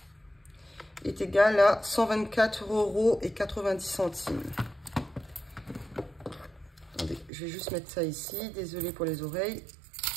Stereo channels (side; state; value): left; drops out; at 7.3 s